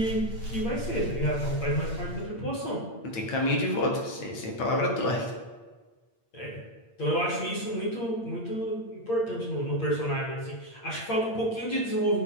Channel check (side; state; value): right; late; 8.7 ms